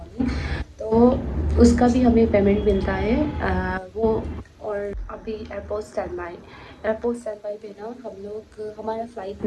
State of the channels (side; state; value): both; identical; correlation 1.00